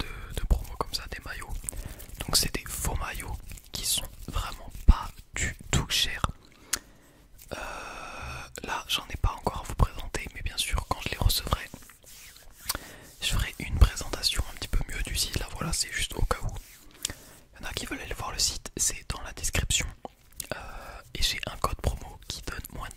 promos comme ça, des maillots. Donc c'est des faux maillots qui sont vraiment pas du tout chers. Là, j'en ai pas encore à vous présenter, mais bien sûr, quand je les recevrai, je ferai une présentation un petit peu mieux du site. Là, voilà, c'est juste au cas où. Il y en a qui veulent aller voir le site, c'est dans la description. Et j'ai un code promo qui donne moins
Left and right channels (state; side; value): identical; both; correlation 1.00